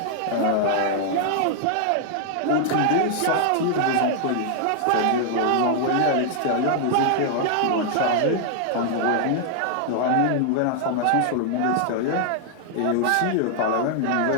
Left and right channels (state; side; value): different; both; correlation 0.00